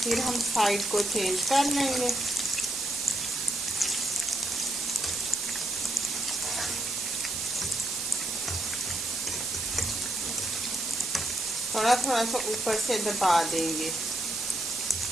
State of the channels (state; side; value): noise; right; hiss, 2 dB below the sound